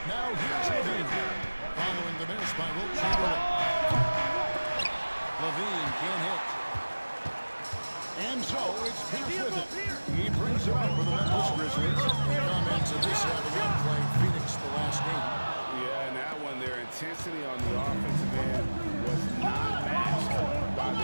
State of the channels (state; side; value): inverted; both; correlation -1.00